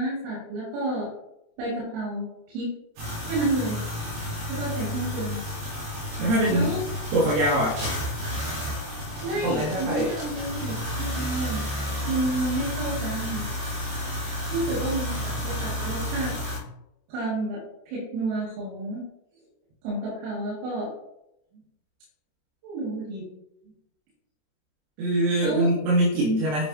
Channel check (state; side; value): late; left; 27 ms